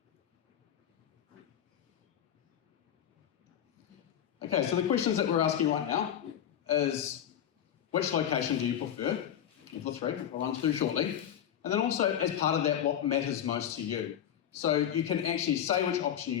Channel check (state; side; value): quieter; right; 9.8 dB